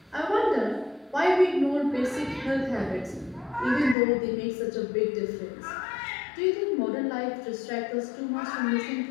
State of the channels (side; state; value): right; drops out; at 4.0 s